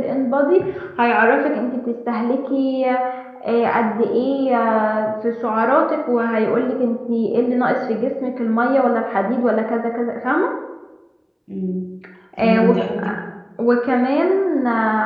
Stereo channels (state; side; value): identical; both; correlation 1.00